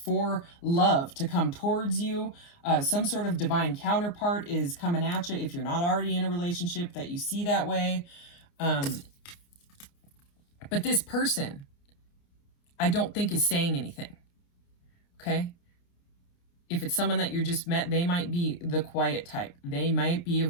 for love to come towards you. Some sort of divine counterpart is coming at you if you're not already in a relationship that you see that way. But this person, I don't think is saying anything, okay? If it's someone that you just met, they might be the quiet type. They might be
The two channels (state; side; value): late; right; 29 ms